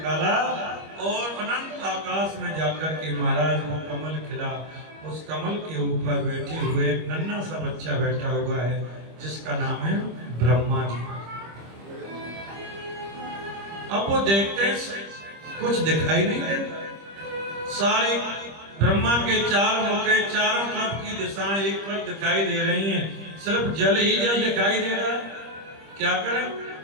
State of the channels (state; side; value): late; left; 25 ms